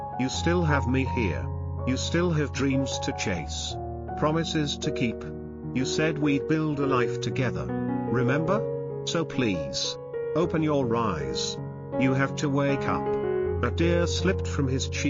You still have me here. You still have dreams to chase, promises to keep. You said we'd build a life together, remember? So please, open your eyes. You have to wake up." A tear slipped from his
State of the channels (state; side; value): identical; both; correlation 1.00